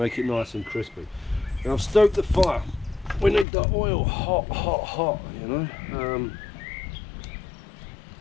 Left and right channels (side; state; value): right; drops out; at 3.5 s